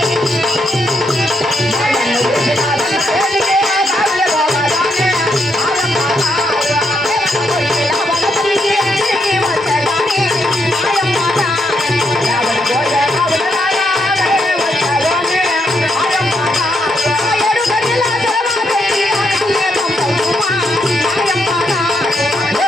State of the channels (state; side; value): normal; both; correlation 0.78